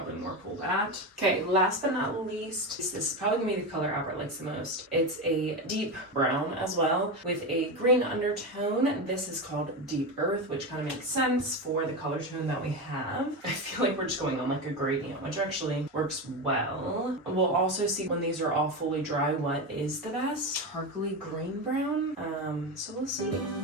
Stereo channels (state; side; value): normal; both; correlation 0.17